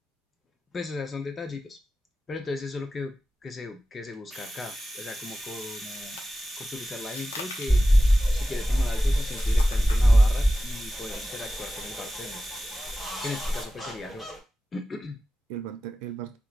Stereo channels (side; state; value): both; normal; correlation 0.94